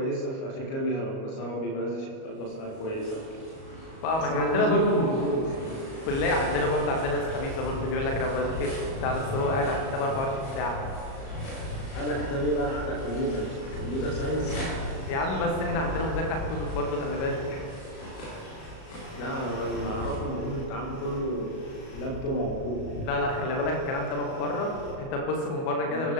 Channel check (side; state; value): right; late; 37 ms